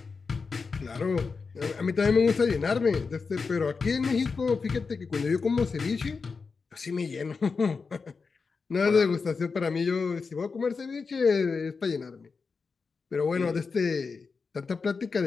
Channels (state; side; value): quieter; right; 4.8 dB